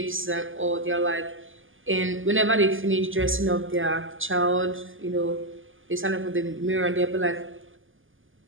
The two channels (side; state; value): left; late; 0.58 ms